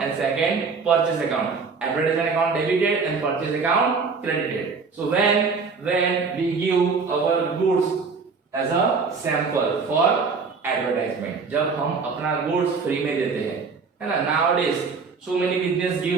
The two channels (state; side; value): quieter; left; 4.9 dB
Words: and second purchase account. Advertisement account debited and purchase account credited. So when we give our goods as a sample for advertisement, जब हम अपना goods free में देते हैं, है ना? Nowadays so many business